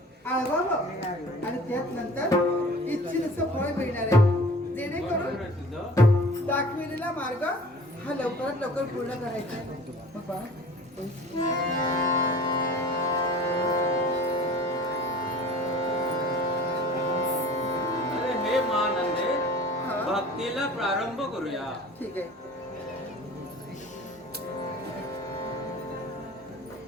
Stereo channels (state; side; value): normal; both; correlation 0.44